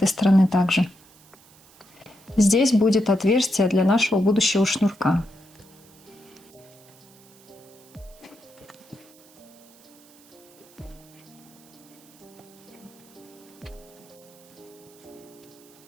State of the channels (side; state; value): right; noise; hiss, 26 dB below the sound